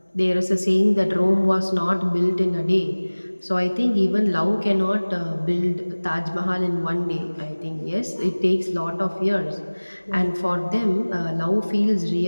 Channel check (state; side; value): inverted; both; correlation -1.00